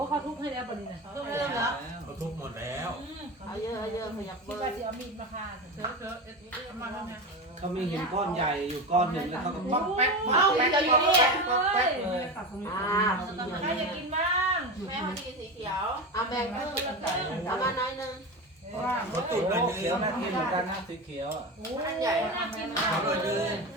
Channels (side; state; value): both; normal; correlation 0.22